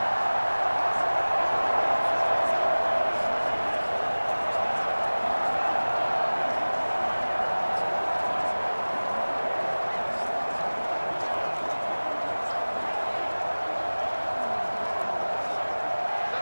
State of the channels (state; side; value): inverted; both; correlation -1.00